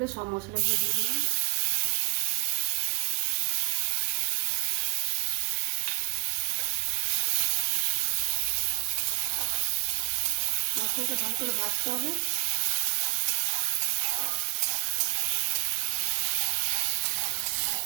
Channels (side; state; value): left; quieter; 30.0 dB